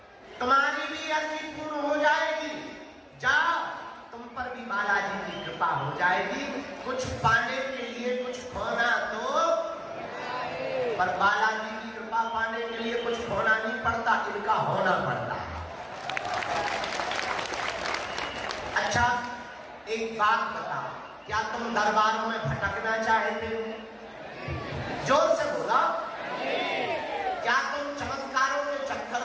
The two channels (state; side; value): identical; both; correlation 1.00